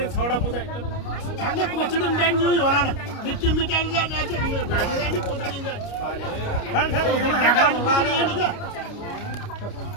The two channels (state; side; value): late; right; 29 ms